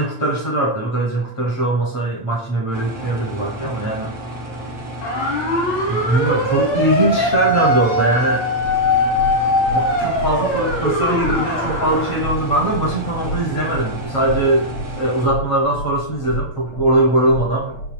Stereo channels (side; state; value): right; late; 8.8 ms